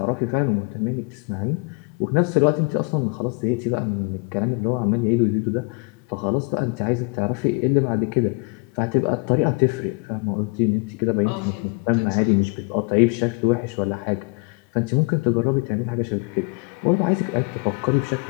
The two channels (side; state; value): right; quieter; 32.2 dB